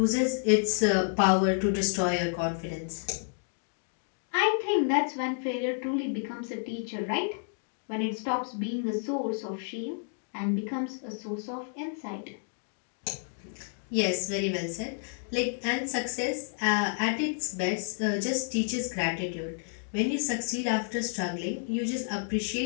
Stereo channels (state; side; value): silent; right; 56 dB below the other